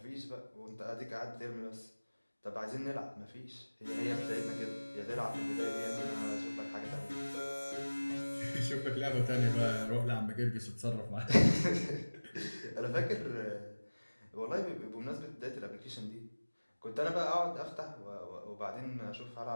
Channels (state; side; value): inverted; both; correlation -1.00